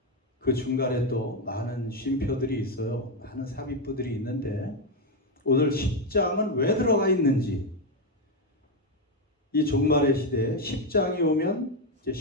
그 중간에 또 많은 쉼표들이 있어요. 많은 삽입부들이 있는데 오늘 10장은 왜 들어가 있는지, 이 종말의 시대에 10장이 오면 이제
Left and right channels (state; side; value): normal; both; correlation 0.06